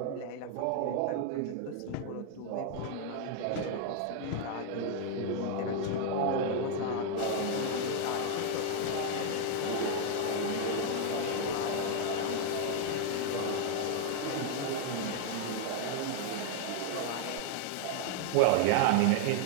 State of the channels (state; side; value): different; both; correlation 0.00